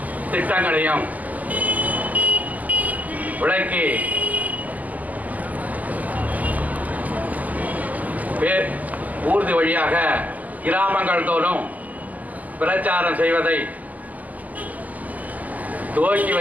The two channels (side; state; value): left; late; 0.079 ms